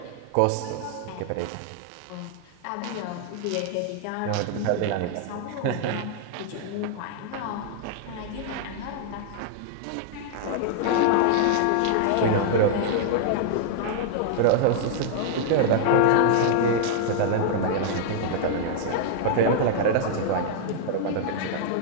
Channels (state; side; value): different; both; correlation -0.01